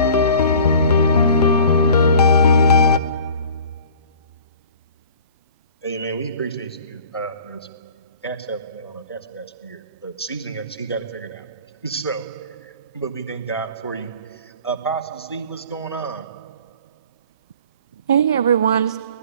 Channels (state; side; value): inverted; both; correlation -0.47